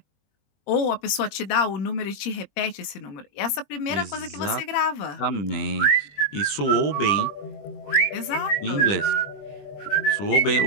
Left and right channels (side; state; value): right; late; 21 ms